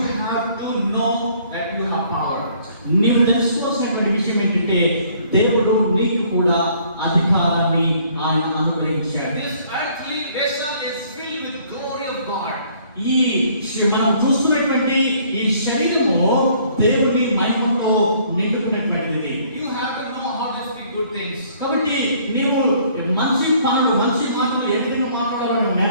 have to know that you have power. నీవు తెలుసుకోవాల్సినటువంటి విషయం ఏంటంటే దేవుడు నీకు కూడా అధికారాన్ని ఆయన అనుగ్రహించాడు. This earthly vessel is filled with glory of God. ఈ మనం చూస్తున్నటువంటి ఈ శరీరము దేవుని మహిమతో నిండుకున్నటువంటిది. You have to know how to speak good things. కాబట్టి నీవు మంచి పనులు, మంచి మాటలు ఏ విధంగా మాట్లాడాలో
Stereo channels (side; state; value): both; inverted; correlation -0.61